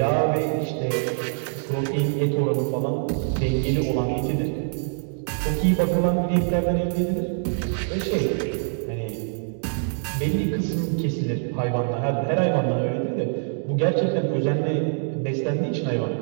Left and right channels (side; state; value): left; silent; 62 dB below the other